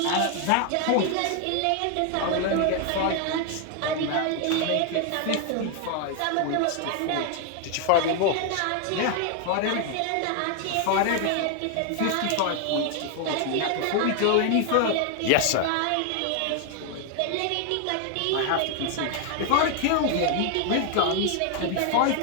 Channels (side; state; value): both; different; correlation 0.00